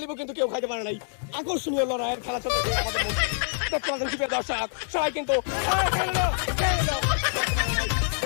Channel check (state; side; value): silent; right; digital silence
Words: নাই। আকর্ষণীয় লড়াইয়ের খেলা চলতেছে আমাদের মধ্যে। দেখতে পাচ্ছেন সুপ্রিয় দর্শক সবাই কিন্তু